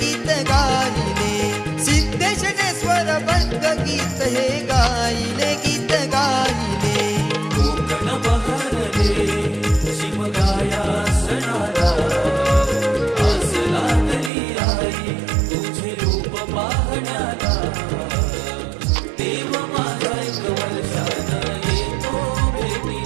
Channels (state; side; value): drops out; left; at 14.3 s